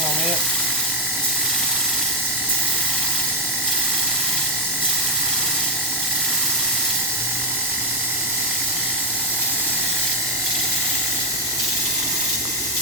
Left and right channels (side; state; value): both; normal; correlation 0.00